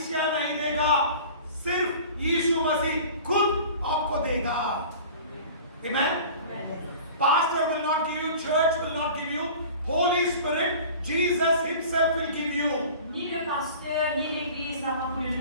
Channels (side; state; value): both; inverted; correlation -0.41